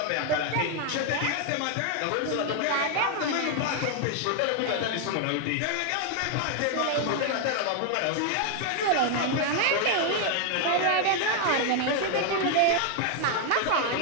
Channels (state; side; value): different; both; correlation 0.00